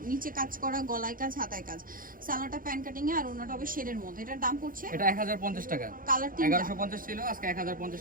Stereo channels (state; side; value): late; left; 0.40 ms